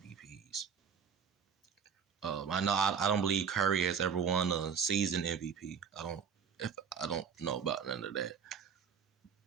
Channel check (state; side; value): quieter; left; 7.0 dB